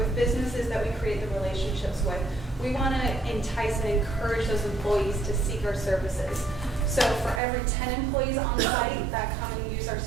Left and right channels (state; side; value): drops out; left; at 7.4 s